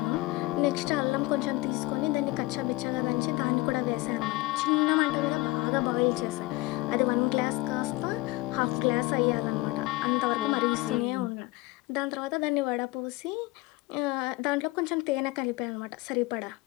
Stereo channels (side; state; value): right; quieter; 20.8 dB